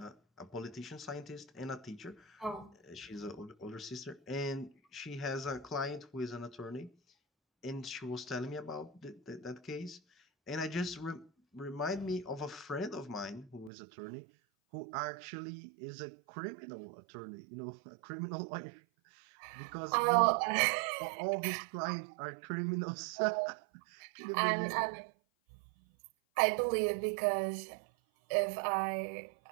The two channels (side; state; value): left; drops out; at 13.7 s